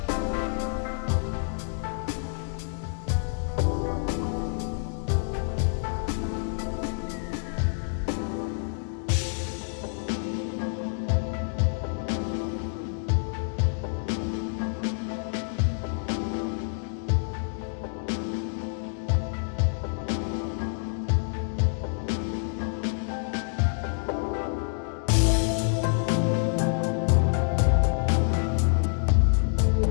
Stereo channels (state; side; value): silent; right; digital silence